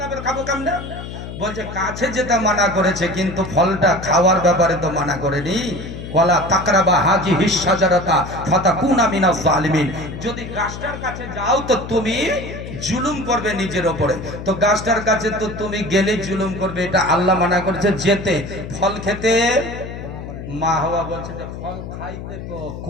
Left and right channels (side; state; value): left; noise; hum, 10 dB below the sound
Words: বের খাবো কেমনে? বলছে কাছে যেতে মানা করেছে, কিন্তু ফলটা খাওয়ার ব্যাপারে তো মানা করেনি। ওয়ালা তাকরাবা হাযিহি শাজারাতা ফাতাকুনা মিনাজ জালিমিন। যদি গাছটার কাছে যাও তো তুমি জুলুম করবে নিজের উপরে, তো গাছটার কাছে তো তুমি গেলে জুলুম করবে, এটা আল্লাহ মানা করেছে যেতে। ফল খেতে মা হাওয়া বলছে যে ফল খাইতে তো